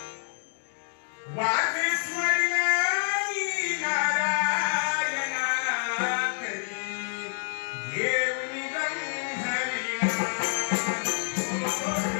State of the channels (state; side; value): silent; right; digital silence